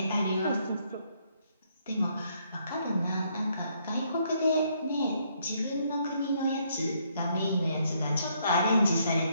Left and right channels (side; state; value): both; inverted; correlation -0.71